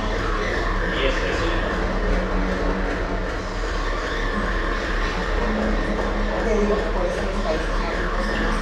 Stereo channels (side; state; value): both; identical; correlation 1.00